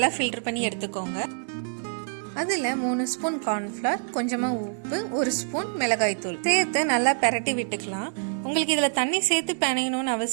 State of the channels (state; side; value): silent; left; 61 dB below the other